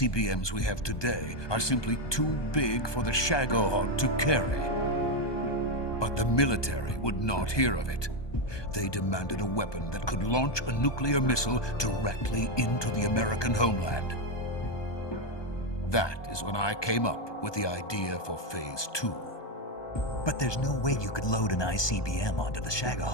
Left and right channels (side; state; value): right; late; 1.2 ms